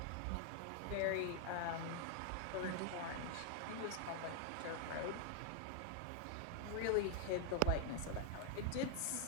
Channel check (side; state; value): both; different; correlation 0.00